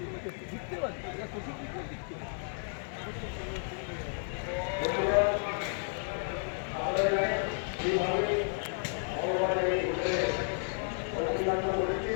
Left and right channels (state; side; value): silent; right; 56 dB below the other